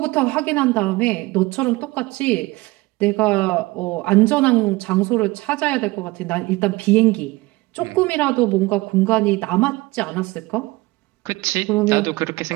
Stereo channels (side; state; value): left; quieter; 21.6 dB